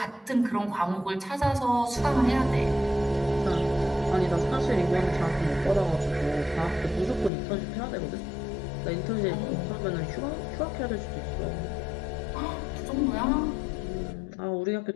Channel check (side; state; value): right; drops out; at 7.3 s